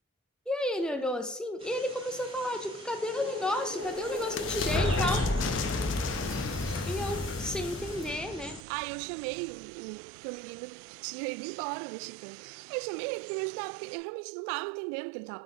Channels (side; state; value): left; drops out; at 8.7 s